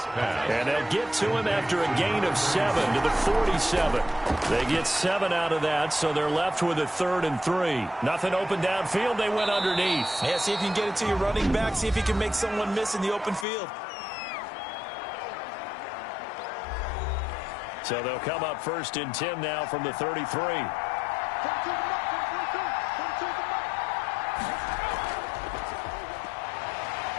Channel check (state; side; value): drops out; right; at 13.5 s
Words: they'll get to him after a gain of 7 to the 47. They get 7 out of that, so they're left with a 3rd and 3. Nothing open downfield. They went underneath. Yeah, see if you can get it to your running back. See if you can make someone miss in the open field. So they'll come up 1st and 10 now from the 33.